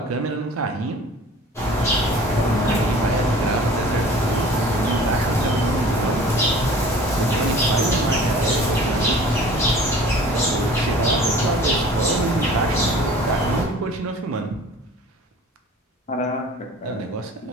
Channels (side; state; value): both; normal; correlation 0.46